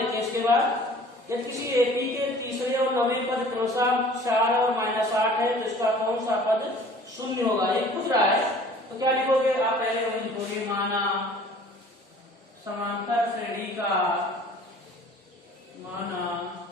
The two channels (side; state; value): both; normal; correlation 0.49